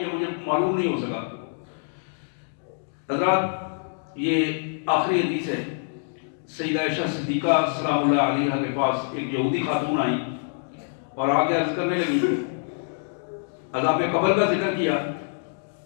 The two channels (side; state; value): right; silent; digital silence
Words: ہے، مجھے معلوم نہیں ہو سکا. حضرات یہ آخری حدیث ہے. سیدہ عائشہ صدیقہ سلام اللہ علیہا کے پاس ایک یہودی خاتون آئی اور آگے عرض کرنے لگی، عذاب قبر کا ذکر کیا